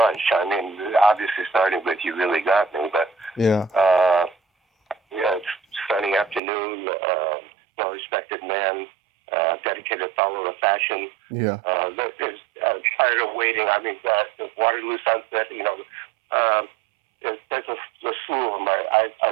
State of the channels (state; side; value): drops out; left; at 6.4 s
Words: I mean, obviously starting with "You Really Got Me," but yeah, "Sunny Afternoon," "Well Respected Man," "Dedicated Follower of Fashion." Yeah. There's "Tired of Waiting." I mean, "Waterloo Sunset." You know, there's a slew of them.